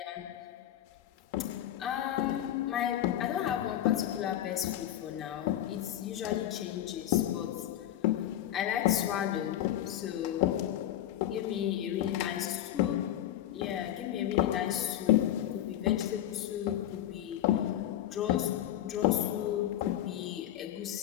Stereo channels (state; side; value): quieter; right; 12.1 dB